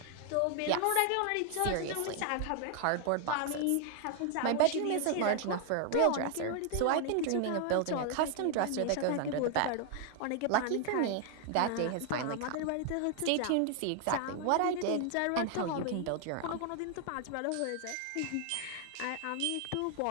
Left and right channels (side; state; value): both; different; correlation 0.00